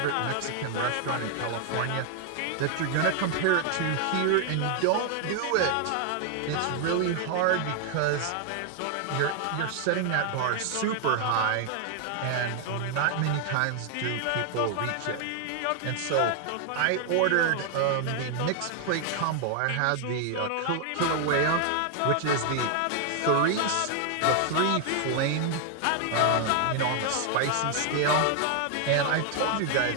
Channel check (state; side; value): different; both; correlation 0.00